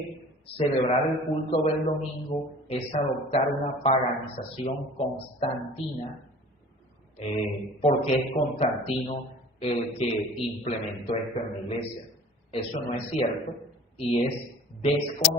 celebrar el culto del domingo es adoptar una paganización constantina, porque es Constantino el que implementó esto en la iglesia. Eso no es cierto y es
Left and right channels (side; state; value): both; normal; correlation 0.44